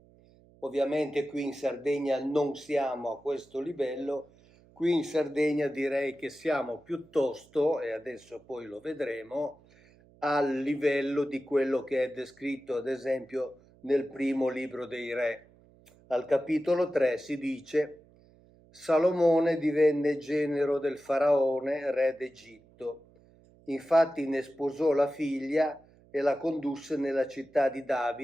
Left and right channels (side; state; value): right; noise; hum, 28 dB below the sound